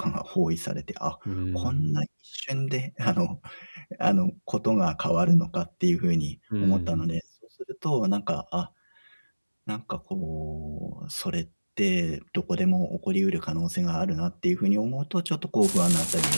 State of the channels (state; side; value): inverted; both; correlation -1.00